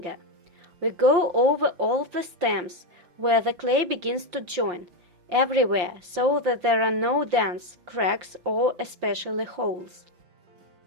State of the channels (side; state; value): left; late; 5.7 ms